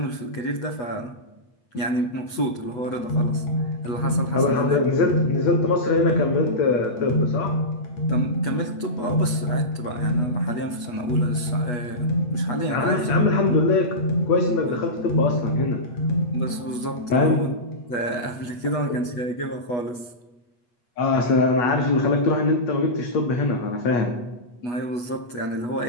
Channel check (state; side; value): late; right; 8.2 ms